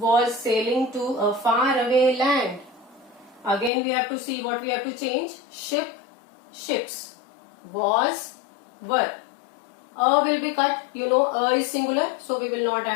sailing to a faraway land. Again we have to see what we have to change. Ship, ships. Was, were. A will be cut. You know a is singular, so we will not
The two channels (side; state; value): right; drops out; at 3.7 s